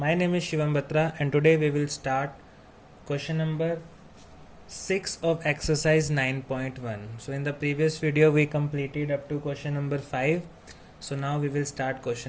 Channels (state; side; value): identical; both; correlation 1.00